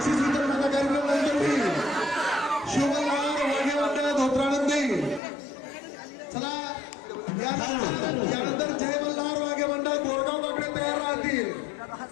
बक्षीस वितरणाचा कार्यक्रम मंडळी शिवमल्हार वाघे मंडळ धोत्रानंदी. चला यानंतर जय मल्हार वाघे मंडळ गोरगाव बाकडे तयार राहतील.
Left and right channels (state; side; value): drops out; right; at 5.2 s